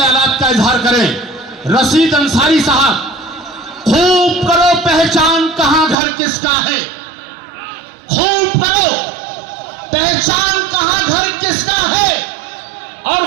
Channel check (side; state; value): left; drops out; at 6.0 s